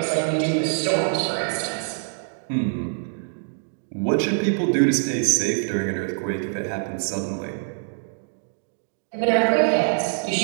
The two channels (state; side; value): silent; left; digital silence